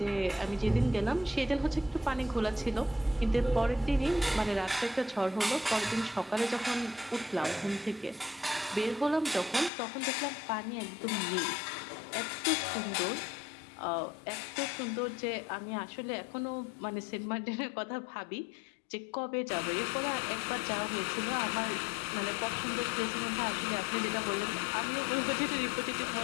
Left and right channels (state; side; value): drops out; right; at 9.7 s